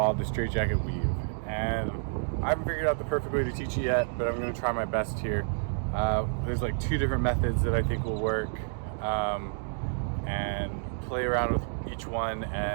the straight jacket weave, and I haven't figured out the perfect way to teach it yet, but I'm going to try my best here. There's like 2 different methods that I think will work, and play around with each one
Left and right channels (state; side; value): silent; left; digital silence